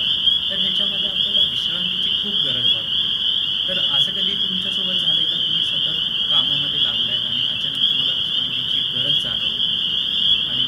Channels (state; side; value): identical; both; correlation 1.00